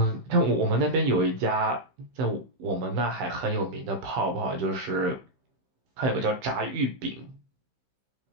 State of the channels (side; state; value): left; late; 15 ms